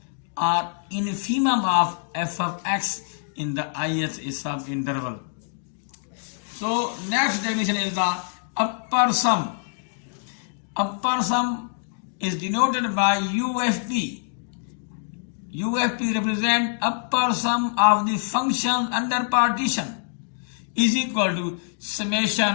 or infimum of f of x in the ith subinterval. So next definition is the upper sum. Upper sum is denoted by UFP. UFP represents upper sum of the functions under partition is equal to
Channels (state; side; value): silent; right; digital silence